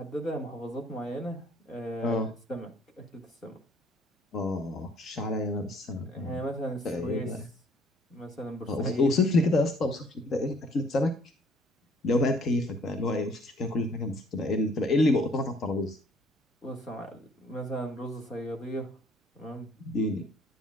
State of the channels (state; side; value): normal; both; correlation 0.60